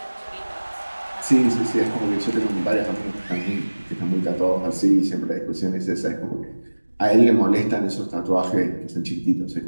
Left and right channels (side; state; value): both; inverted; correlation -1.00